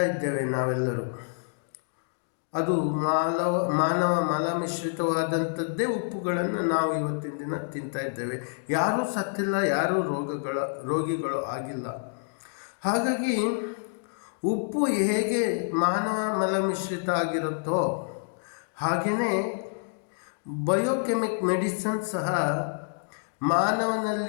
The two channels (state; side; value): silent; right; digital silence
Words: ಇದ್ದೇವೆ ನಾವೆಲ್ಲರೂ. ಅದು ಮಾನವ ಮಲಮಿಶ್ರಿತವಾದಂಥದ್ದೇ ಉಪ್ಪುಗಳನ್ನು ನಾವು ಇವತ್ತಿನ ದಿನ ತಿಂತಾ ಇದ್ದೇವೆ. ಯಾರೂ ಸತ್ತಿಲ್ಲ, ಯಾರೂ ರೋಗಿಗಳು ಆಗಿಲ್ಲ. ಹಾಗಾಗಿ ಉಪ್ಪು ಹೇಗೆ ಮಾನವ ಮಲಮಿಶ್ರಿತ ಆಗಿರುತ್ತೋ ಹಾಗೆಯೇ ಬಯೋಕೆಮಿಕ್ ಮೆಡಿಸಿನ್ ಸಹ ಮಾನವನ